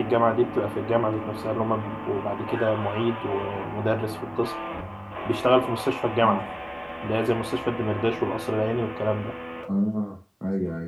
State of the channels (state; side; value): identical; both; correlation 1.00